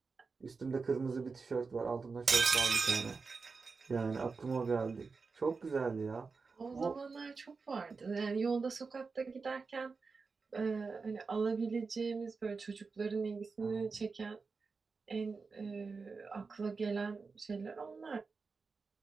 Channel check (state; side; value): quieter; left; 4.6 dB